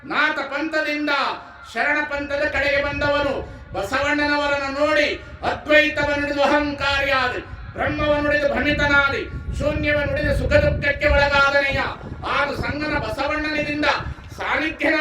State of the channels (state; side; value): identical; both; correlation 1.00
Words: ನಾಥ ಪಂಥದಿಂದ ಶರಣ ಪಂಥದ ಕಡೆಗೆ ಬಂದವನು. ಬಸವಣ್ಣನವರನ್ನು ನೋಡಿ ಅದ್ವೈತವನ್ನುಡಿದು ಅಹಂಕಾರಿಯಾದ, ಬ್ರಹ್ಮವನ್ನುಡಿದು ಭ್ರಮಿತನಾದಿ, ಶೂನ್ಯವನ್ನುಡಿದು ಸುಖ ದುಃಖಕ್ಕೆ ಒಳಗಾದನೆಯ, ಆಗ ಸಂಗನ ಬಸವಣ್ಣನಿಂದ